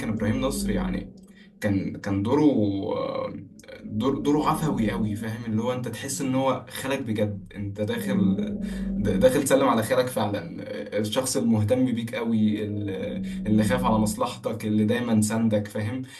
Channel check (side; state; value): both; identical; correlation 1.00